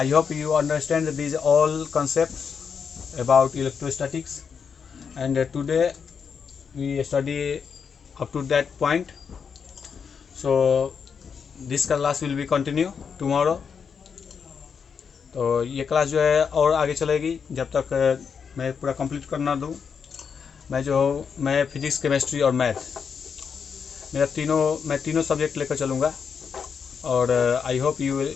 hope you understand this all concepts about electrostatics, and today we study up to that point. So this class will be continue tomorrow. तो ये क्लास जो है और आगे चलेगी जब तक मैं पूरा कंप्लीट करना दूँ। मैं फिजिक्स, केमिस्ट्री और मैथ, मैं तीनों सब्जेक्ट लेकर चलूँगा और I hope you will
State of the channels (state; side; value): quieter; right; 6.4 dB